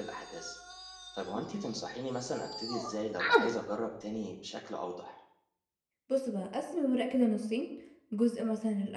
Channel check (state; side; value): identical; both; correlation 1.00